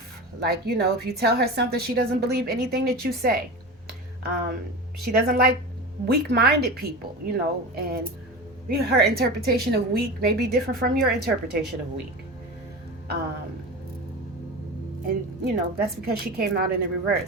Like, if you tell her something, she doesn't believe anything that you say. She doesn't like weak-minded people, and her interpretation of weak may be different from your interpretation of weak. And, that's because she came out in the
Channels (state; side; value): normal; both; correlation 0.28